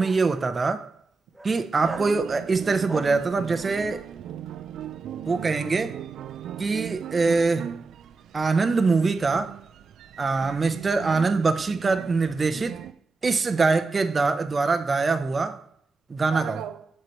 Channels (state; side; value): quieter; left; 3.8 dB